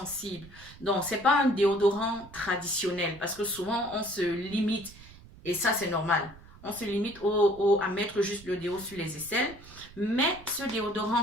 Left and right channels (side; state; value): right; noise; rumble, 20 dB below the sound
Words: Donc c'est pas un déodorant traditionnel parce que souvent on se limite. Et ça c'est normal. On se limite à mettre juste le déo sur les aisselles. Mais ce